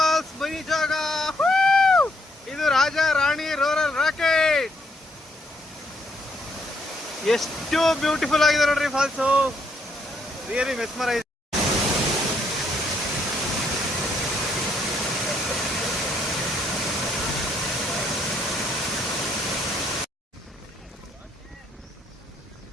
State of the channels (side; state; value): both; normal; correlation 0.72